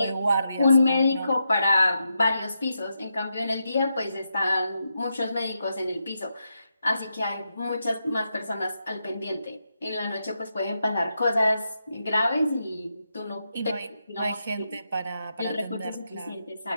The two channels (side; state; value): both; inverted; correlation -0.85